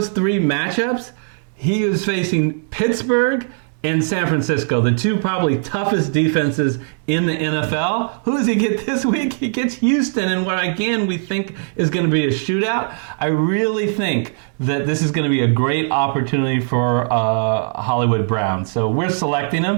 3 matchups, he is facing Pittsburgh and San Francisco, the 2 probably toughest defenses in the NFL. Who does he get this week? He gets Houston, and what again we think is going to be a shootout. I really think that this is going to be a great opportunity for Hollywood Brown. So we're selecting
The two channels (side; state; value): left; silent; digital silence